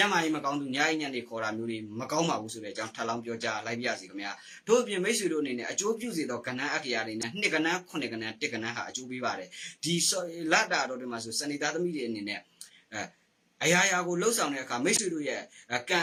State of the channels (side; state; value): both; identical; correlation 1.00